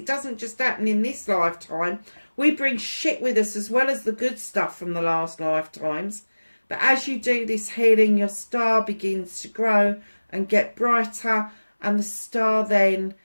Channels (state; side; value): inverted; both; correlation -1.00